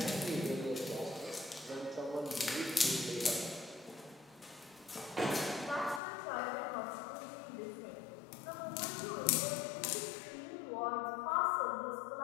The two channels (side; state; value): right; drops out; at 6.0 s